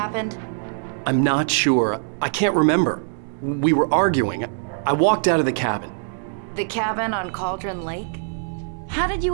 I'm not sure. I can't remember. We were arguing. I walked out of the cabin. The cabin on Cauldron Lake? How did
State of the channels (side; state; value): left; silent; digital silence